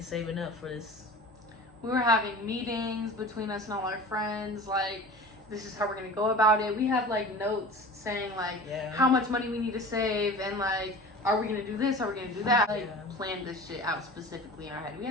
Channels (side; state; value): both; normal; correlation 0.37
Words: saving up for this. We were having meetings between us and all our friends, like, this is how we're going to go about it. We have, like, notes saying, like, how much money we need to save, and, like, are we going to do this, are we going to do that? Like, planned this shit out specifically in our head. We